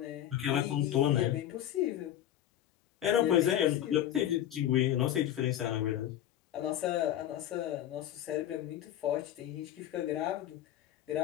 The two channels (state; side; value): quieter; right; 11.8 dB